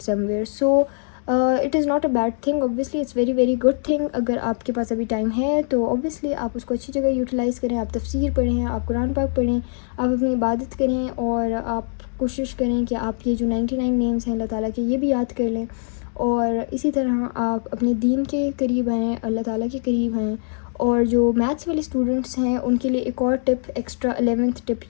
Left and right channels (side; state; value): right; silent; 63 dB below the other